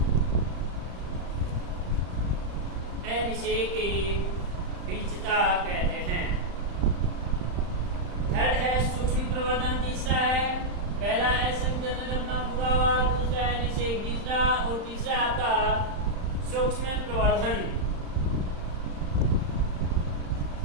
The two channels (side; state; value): left; late; 35 ms